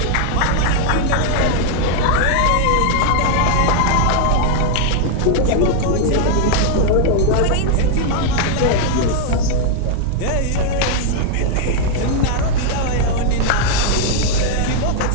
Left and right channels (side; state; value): both; different; correlation -0.01